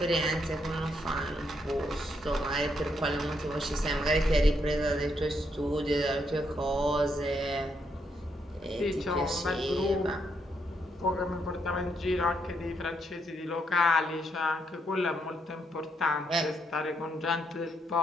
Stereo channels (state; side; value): normal; both; correlation 0.77